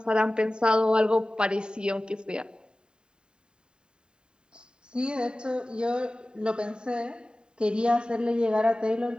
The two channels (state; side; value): late; left; 0.049 ms